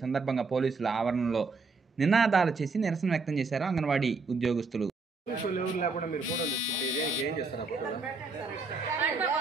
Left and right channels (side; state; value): left; quieter; 4.1 dB